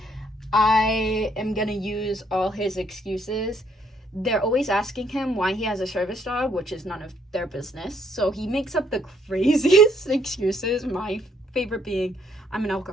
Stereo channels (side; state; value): both; normal; correlation 0.69